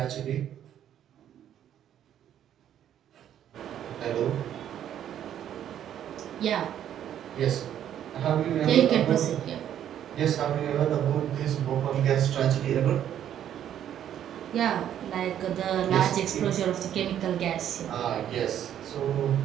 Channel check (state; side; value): quieter; left; 10.4 dB